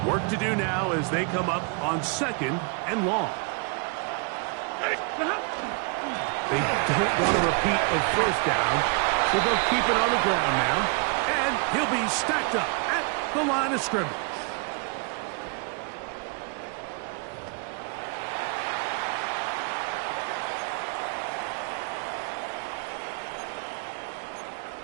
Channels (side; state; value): left; quieter; 34.8 dB